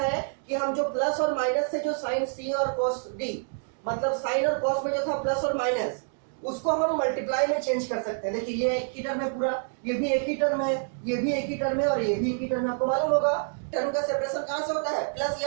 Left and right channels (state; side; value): silent; left; digital silence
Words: कि हम जो प्लस और माइनस से जो sin c और cos d, मतलब sin और cos में जो था प्लस और माइनस, उसको हम मल्टीप्लाई में चेंज कर सकते हैं। देखिए ये एक ही टर्म है पूरा, ये भी एक ही टर्म है, ये भी एक ही टर्म है, और ये भी एक ही टर्म है। आपको मालूम होगा टर्म का सेपरेशन कहां से होता है, प्लस